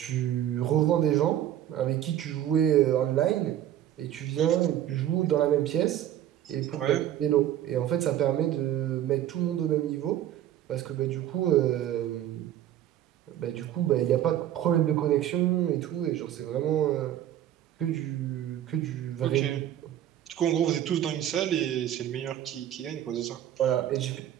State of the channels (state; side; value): quieter; left; 11.7 dB